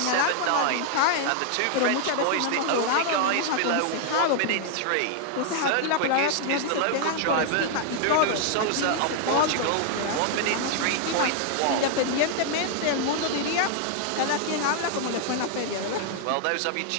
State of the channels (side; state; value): both; different; correlation 0.00